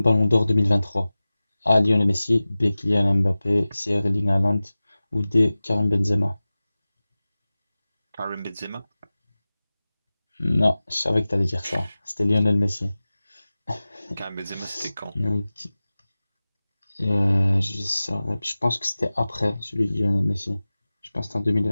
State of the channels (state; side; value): inverted; both; correlation -0.97